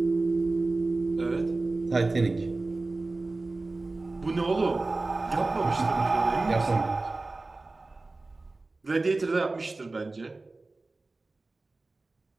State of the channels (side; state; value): left; quieter; 3.3 dB